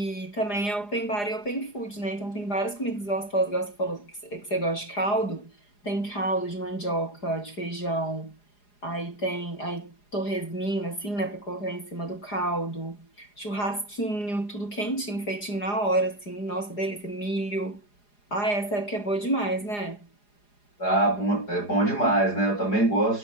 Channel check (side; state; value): right; late; 4.9 ms